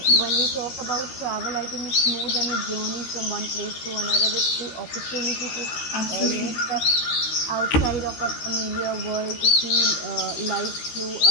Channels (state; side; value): late; right; 13 ms